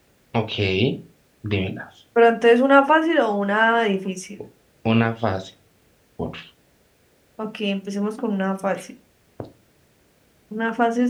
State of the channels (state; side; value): identical; both; correlation 1.00